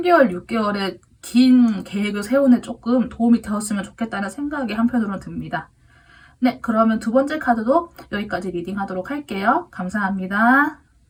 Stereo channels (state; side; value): identical; both; correlation 1.00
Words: 6개월의 긴 계획을 세우는 조금 도움이 되었으면 좋겠다는 생각이 한편으로는 듭니다. 네, 그러면 두 번째 카드도 여기까지 리딩하도록 할게요. 감사합니다.